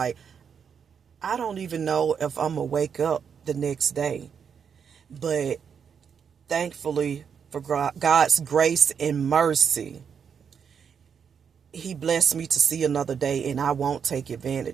I don't even know if I'm gonna wake up the next day. But thankfully, for God's grace and mercy, He blessed me to see another day, and I won't take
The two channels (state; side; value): quieter; left; 7.1 dB